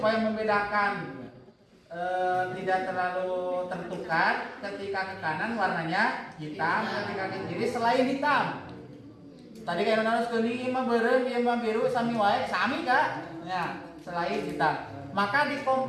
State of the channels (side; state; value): both; identical; correlation 1.00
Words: membedakan tidak terlalu tertukar, ketika ke kanan warnanya hitam, ketika ke kiri selain hitam. Tadi kayak harus kuning, mah beureum, ieu mah biru, sami wae, sami Kak. Ya, selain hitam. Maka di